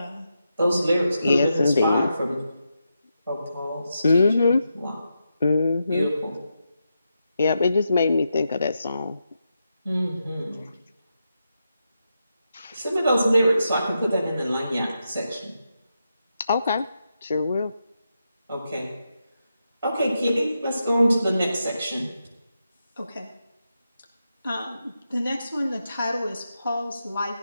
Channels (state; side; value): inverted; both; correlation -0.86